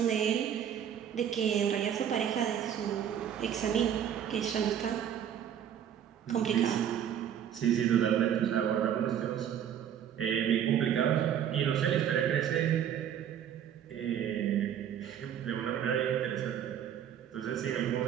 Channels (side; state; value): left; quieter; 9.4 dB